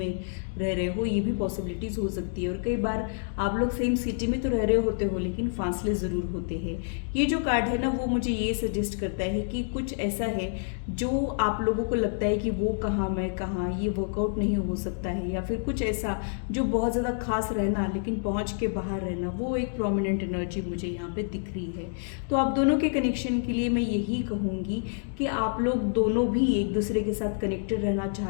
रह रहे हो, ये भी पॉसिबिलिटीज़ हो सकती है। और कई बार आप लोग सेम सिटी में तो रह रहे होते हो, लेकिन फासले ज़रूर होते हैं। ये जो कार्ड है ना, वो मुझे ये सजेस्ट करता है कि कुछ ऐसा है जो आप लोगों को लगता है कि वो कहाँ मैं कहाँ, ये वर्कआउट नहीं हो सकता है, या फिर कुछ ऐसा जो बहुत ज़्यादा खास रहना लेकिन पहुँच के बाहर रहना, वो एक प्रोमिनेंट एनर्जी मुझे यहाँ पे दिख रही है। तो आप दोनों के कनेक्शन के लिए मैं यही कहूंगी कि आप लोग दोनों भी एक दूसरे के साथ कनेक्टेड रहना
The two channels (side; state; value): right; silent; digital silence